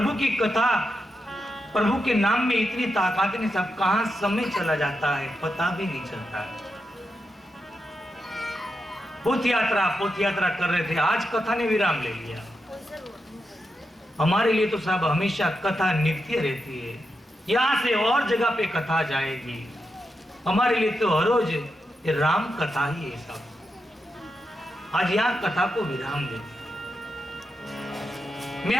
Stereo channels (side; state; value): both; normal; correlation 0.86